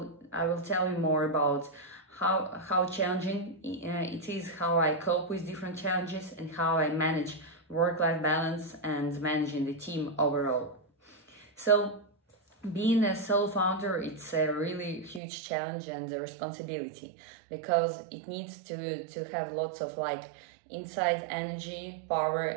will tell you more about how challenging it is, how I cope with different challenges, and how I manage work-life balance and managing the team overall. So being a solo founder, it's a really huge challenge and a responsibility because it needs to have lots of inside energy,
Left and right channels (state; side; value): drops out; left; at 15.2 s